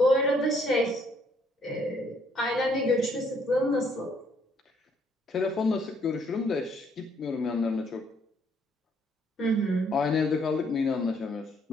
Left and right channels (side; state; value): both; normal; correlation 0.67